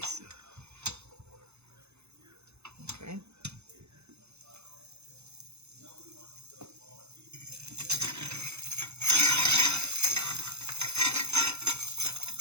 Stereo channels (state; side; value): late; left; 0.81 ms